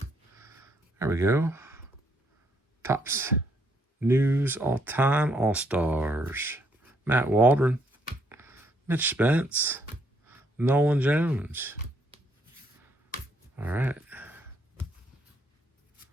There we go. Topps News all-time All-Stars. Matt Waldron. Mitch Spence. Nolan Jones. All right.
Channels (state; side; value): normal; both; correlation 0.71